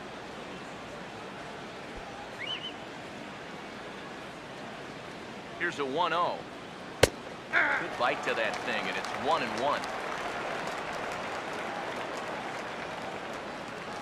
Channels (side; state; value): both; identical; correlation 1.00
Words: Here's a 1-0. Good bite to that thing, and it's 1-1.